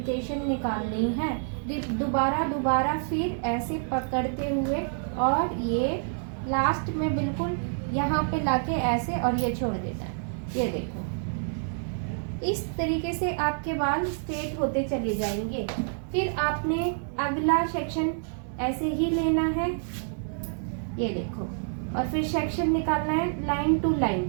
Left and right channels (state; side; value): silent; left; digital silence